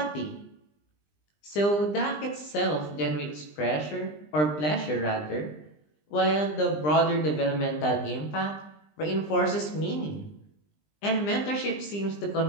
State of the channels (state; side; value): late; right; 20 ms